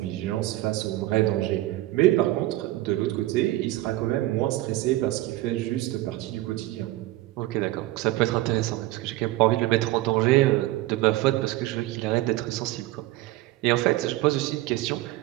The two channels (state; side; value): quieter; left; 17.1 dB